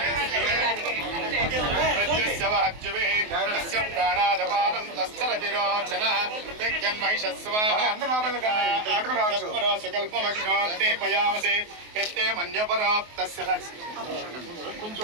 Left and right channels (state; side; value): late; left; 24 ms